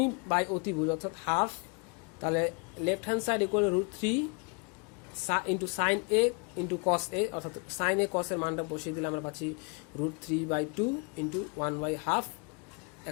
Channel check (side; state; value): right; quieter; 34.3 dB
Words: বাই অতিভুজ অর্থাৎ হাফ। তাহলে left hand side equal to √3 into sine A into cos A অর্থাৎ সাইন এ কস এর মানটা বসিয়ে দিলে আমরা পাচ্ছি √3/2 ইন্টু 1/2।